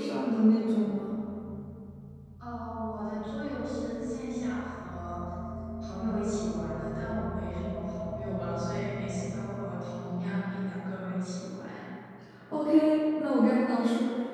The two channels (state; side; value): identical; both; correlation 1.00